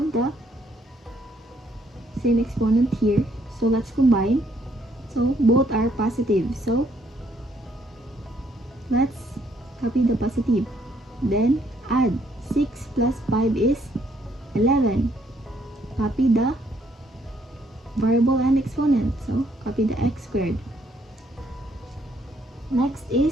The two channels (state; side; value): normal; both; correlation 0.69